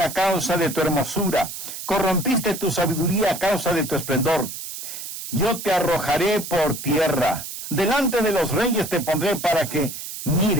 a causa de tu hermosura, corrompiste tu sabiduría a causa de tu esplendor. Yo te arrojaré por tierra, delante de los reyes te pondré para que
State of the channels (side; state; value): right; noise; hiss, 9 dB below the sound